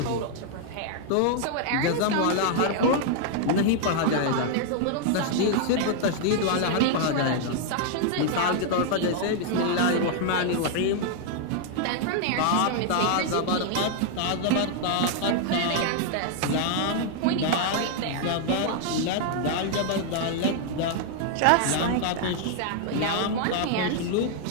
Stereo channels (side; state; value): both; different; correlation 0.00